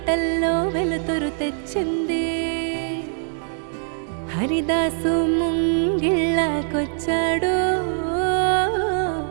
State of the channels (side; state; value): left; silent; digital silence